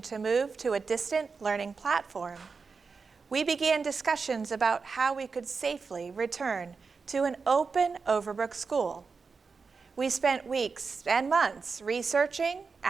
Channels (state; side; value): quieter; left; 4.9 dB